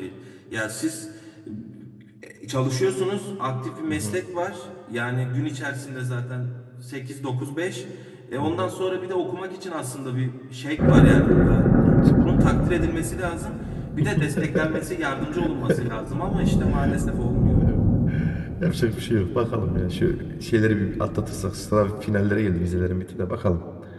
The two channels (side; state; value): both; identical; correlation 1.00